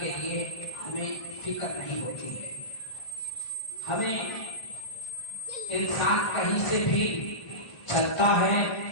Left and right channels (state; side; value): late; right; 1.5 ms